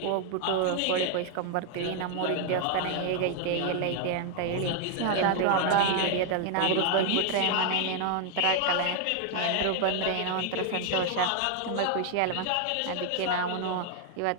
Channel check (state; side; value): different; both; correlation 0.00